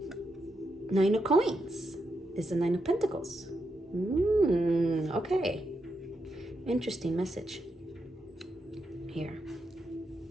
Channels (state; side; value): normal; both; correlation 0.83